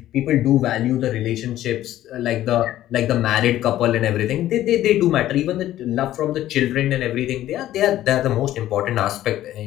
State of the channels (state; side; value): quieter; right; 13.5 dB